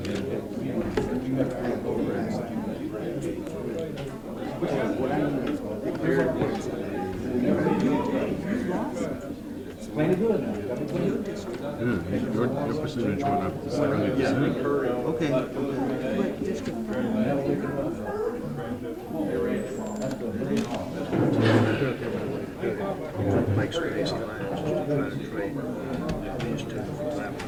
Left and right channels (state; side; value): identical; both; correlation 1.00